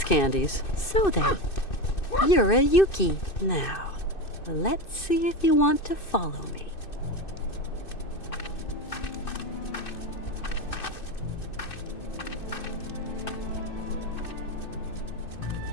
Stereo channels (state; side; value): late; right; 2.6 ms